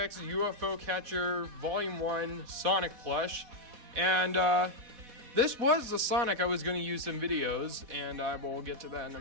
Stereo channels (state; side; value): late; left; 4.1 ms